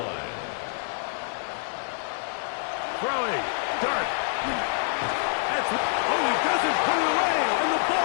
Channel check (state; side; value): silent; right; digital silence